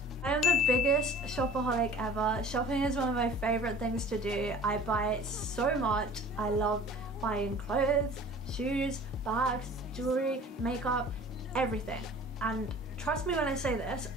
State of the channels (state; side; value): normal; both; correlation 0.45